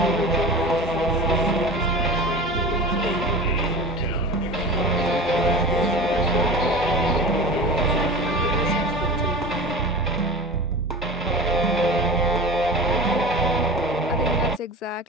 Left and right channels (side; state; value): both; normal; correlation 0.33